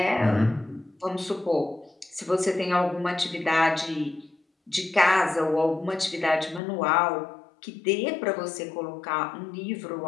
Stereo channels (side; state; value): right; drops out; at 6.6 s